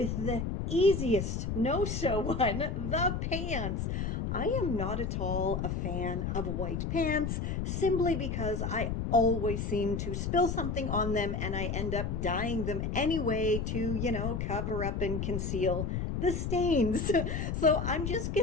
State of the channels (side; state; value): left; noise; rumble, 2 dB below the sound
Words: the easiest no-sew one, the pants. I am not at all a fan of white pants simply because I always seem to spill something on them and I end up dyeing them anyway to, cover up and conceal the stains. So I'm just